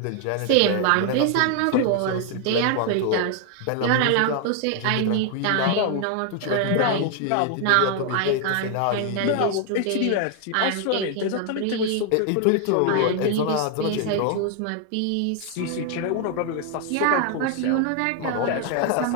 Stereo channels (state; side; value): different; both; correlation 0.00